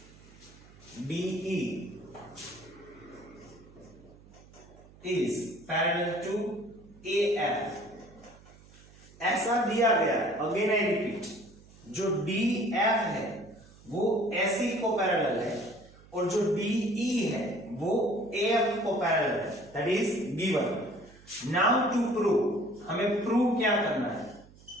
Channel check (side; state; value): right; noise; hum, 24 dB below the sound